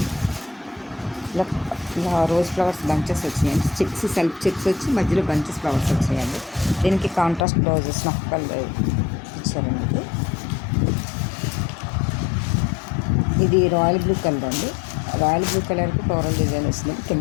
ఇలా రోజ్ ఫ్లవర్స్ బంచెస్ వచ్చినాయండి. చిప్స్ సెల్ఫ్ చిప్స్ వచ్చి మధ్యలో బంచెస్ ఫ్లవర్స్ వచ్చాయండి. దీనికి కాంట్రాస్ట్ బ్లౌజెస్ స్నఫ్ కలర్ ఇచ్చారండి. ఇది రాయల్ బ్లూ కలర్ అండి. రాయల్ బ్లూ కలర్కి ఫ్లోరల్ డిజైన్ వచ్చింది.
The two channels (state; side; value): drops out; right; at 7.5 s